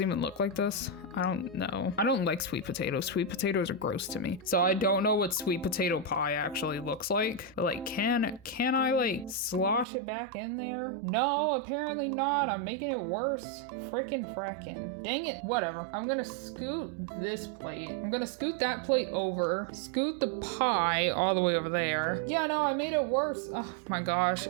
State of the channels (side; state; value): left; drops out; at 9.9 s